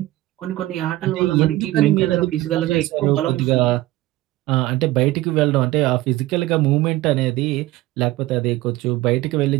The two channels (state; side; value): quieter; left; 17.1 dB